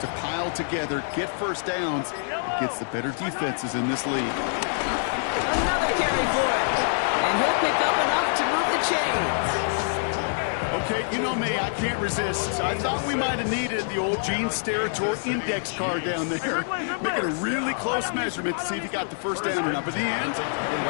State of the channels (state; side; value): silent; right; digital silence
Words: pile together, get first downs, against the better defenses in this league. Another carry for it. And he'll pick up enough to move the chains. Okay, you know me, I can't resist. I thought we might have needed the old Gene Steratore index card down there. Making a really close measurement to see if he got the first down or not. But in the end, the